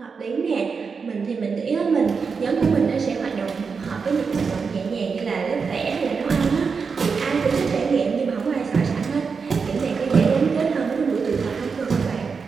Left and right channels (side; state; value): left; quieter; 5.4 dB